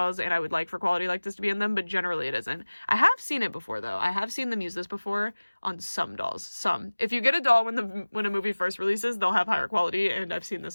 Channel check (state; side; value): inverted; both; correlation -1.00